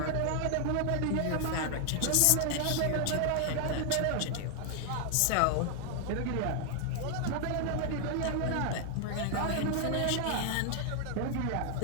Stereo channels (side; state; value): both; different; correlation 0.00